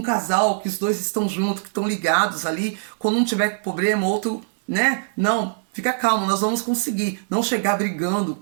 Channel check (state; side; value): silent; left; 64 dB below the other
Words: casal que os dois estão juntos, que estão ligados ali, quando um tiver problema, outro, né? Não, fica calmo, nós vamos conseguir. Não chegar brigando,